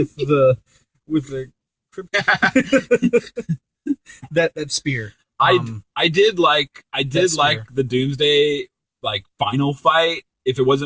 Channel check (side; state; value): both; identical; correlation 1.00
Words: the that spear. I did like the Doomsday final fight. If it